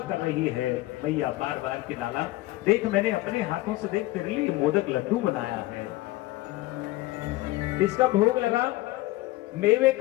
कर रही है। भैया बार बार कि लाला देख मैंने अपने हाथों से देख तेरे लिए मोदक लड्डू बनाया है, इसका भोग लगा, मेवे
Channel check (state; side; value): quieter; right; 18.3 dB